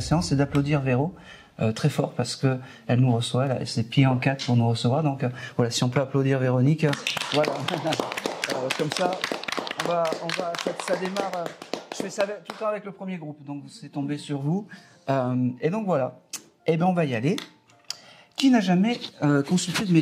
c'est d'applaudir Véro très fort parce que elle nous reçoit, elle a ses pieds en quatre pour nous recevoir. Donc voilà, si on peut applaudir Véronique, voilà. Comme ça, on va, ça démarre. Je fais ça tout le temps avec le premier groupe, donc c'est tombé sur vous. Et donc voilà. Et ben on va y aller. Qui n'a jamais consulté de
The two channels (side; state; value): both; identical; correlation 1.00